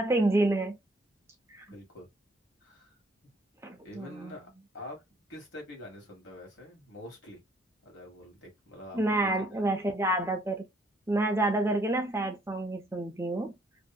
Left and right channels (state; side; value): normal; both; correlation 0.64